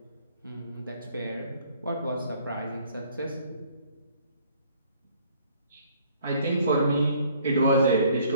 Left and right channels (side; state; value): both; inverted; correlation -0.59